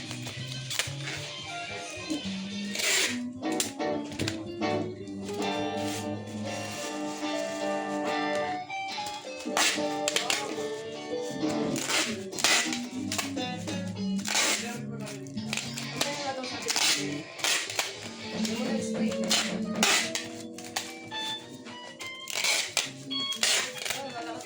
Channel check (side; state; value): both; identical; correlation 1.00